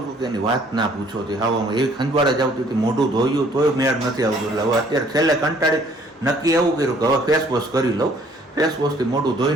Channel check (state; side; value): normal; both; correlation 0.60